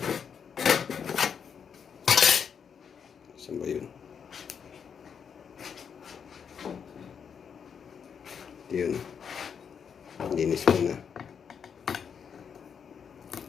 Saan ba yun? Yun. Linis mo na.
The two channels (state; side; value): quieter; right; 7.0 dB